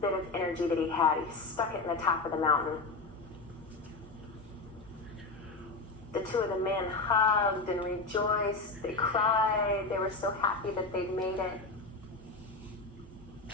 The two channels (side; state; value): right; quieter; 3.7 dB